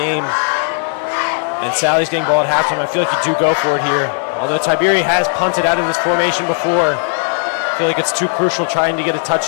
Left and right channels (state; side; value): silent; right; 64 dB below the other